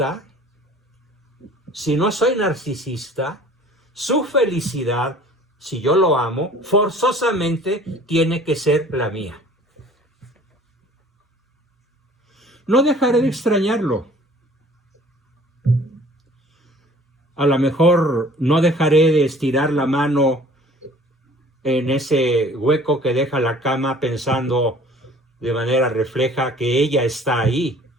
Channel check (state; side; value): normal; both; correlation 0.50